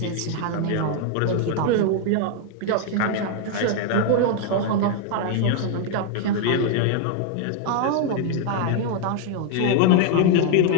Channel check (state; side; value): different; both; correlation 0.00